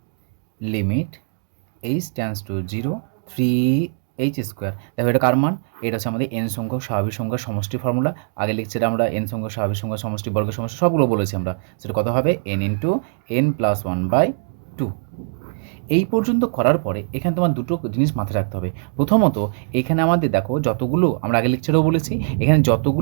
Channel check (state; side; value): silent; left; digital silence